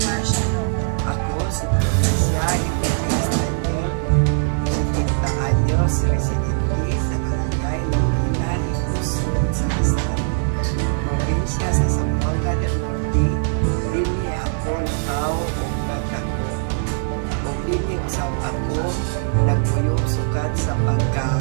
martial law? Ako si Profesya Iglesias Daniel, 70 anyos, residente sa Barangay Longinan, Ikusod sa Rizal, probinsya sa Zamboanga del Norte. Dili ako nakaw o nagtako. O dili usab ako nagpuyo sukat sa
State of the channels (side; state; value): left; silent; 55 dB below the other